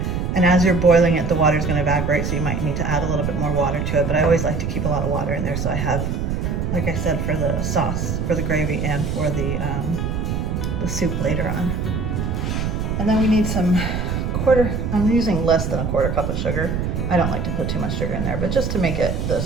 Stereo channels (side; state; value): right; noise; rumble, 1 dB below the sound